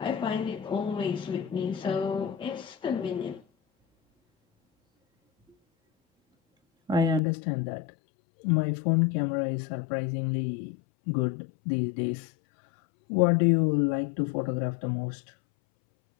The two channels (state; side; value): drops out; right; at 7.2 s